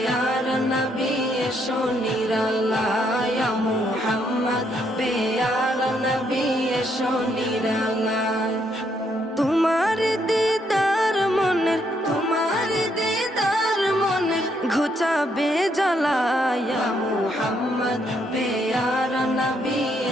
নবী এসো নিরালায়, ইয়া মুহাম্মদ পেয়ারা নবী এসো নিরালায়। তোমার দিদার মনের, তোমার দিদার মনের ঘুচাবে জ্বালা। ইয়া মুহাম্মদ পেয়ারা নবী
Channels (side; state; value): both; normal; correlation 0.74